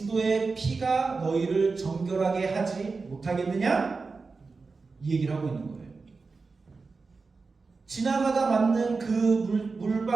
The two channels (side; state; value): left; quieter; 4.3 dB